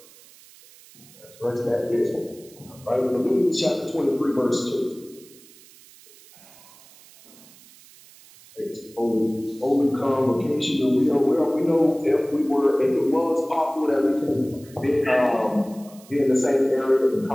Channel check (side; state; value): right; noise; hiss, 24 dB below the sound